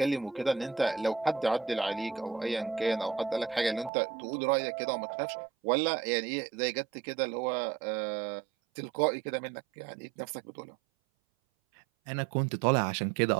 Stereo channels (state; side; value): drops out; left; at 3.9 s